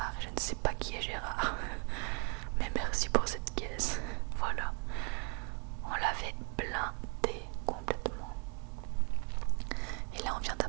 Je ne sais pas qui est Gérard. Mais merci pour cette caisse. Voilà. On l'avait blindé complètement. Et là on vient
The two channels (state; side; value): quieter; left; 37.7 dB